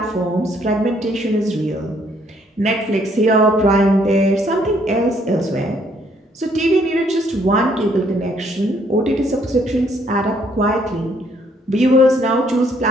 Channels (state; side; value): normal; both; correlation 0.67